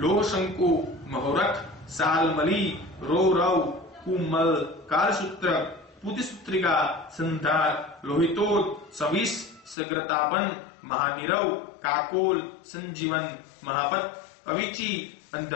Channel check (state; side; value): drops out; right; at 9.8 s